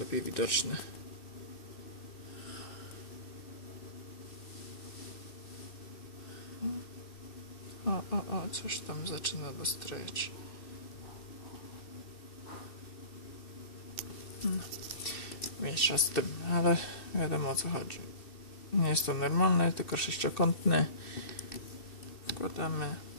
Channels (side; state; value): right; late; 2.7 ms